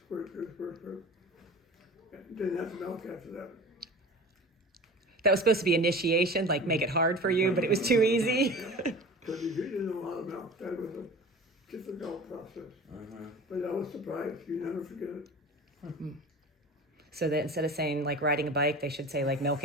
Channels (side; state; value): both; normal; correlation 0.37